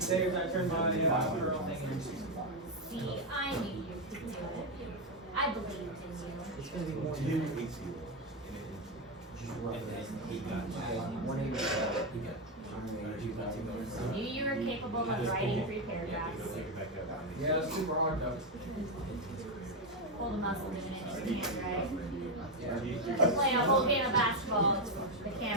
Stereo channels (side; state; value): both; normal; correlation 0.05